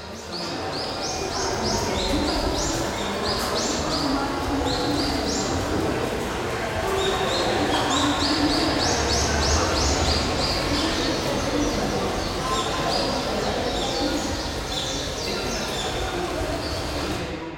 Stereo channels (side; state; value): both; identical; correlation 1.00